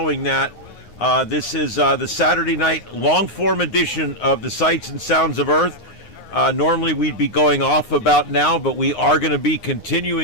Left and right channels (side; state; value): right; late; 9.6 ms